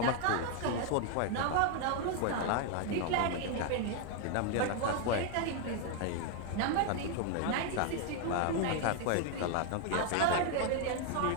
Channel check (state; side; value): different; both; correlation 0.01